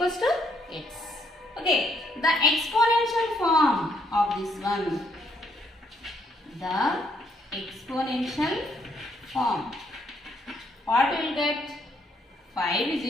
to x. Okay, the exponential form of this one. The exponential form. What we will get? 5 is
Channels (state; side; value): normal; both; correlation 0.71